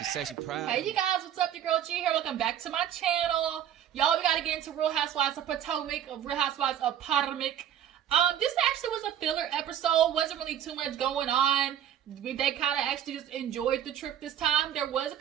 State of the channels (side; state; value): left; quieter; 10.2 dB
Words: said she proud. Hey you guys, what's up? Your girl G here. Welcome back to my channel. Y'all, we gotta get into Real Housewives of Potomac, Real Housewives of Potomac. This actually was a filler episode. Wasn't really too much going on. They kind of actually just enjoyed the trip this time. There was a